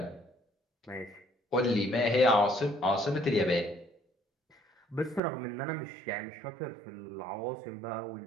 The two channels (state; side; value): drops out; left; at 5.2 s